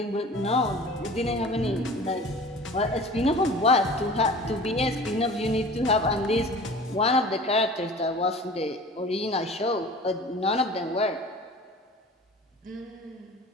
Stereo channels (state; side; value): normal; both; correlation 0.41